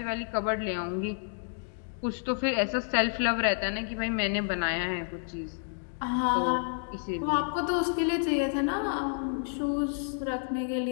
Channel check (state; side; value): silent; right; digital silence